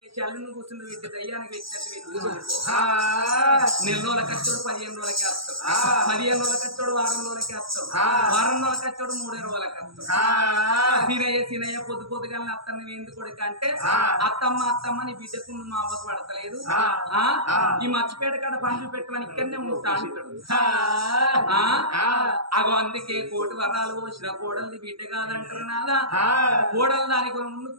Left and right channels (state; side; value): late; left; 0.75 ms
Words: చల్లను కూర్చుని పెట్టి దయ్యానికి పెట్టినట్టు నెల రోజుల కచ్చోడు 15 రోజులకి వస్తాడు 15 రోజుల కచ్చోడు వారం రోజులకి వస్తాడు వారం రోజుల కచ్చోడు 3 రోజులకి వస్తాడు సీనయ్య పొద్దుగా అత్తని ఎందుకు కొడుకు అంటే అత్తమ్మ నీ బిడ్డకు మా అవ్వకు పడతలేదు ఈ మర్చిపేట కాడ పండ్లు పెట్టమని ఇక్కడనే ఉంటా అంటాడు అగో అందుకే కోటి వరాలు పోసిన కోడల్ని బిడ్డ కాదంటారు నాదా కోడలు దానికి ముందు